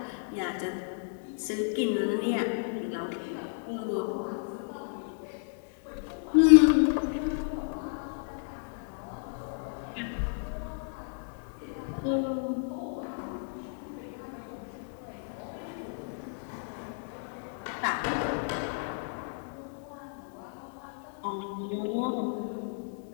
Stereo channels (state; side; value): silent; right; digital silence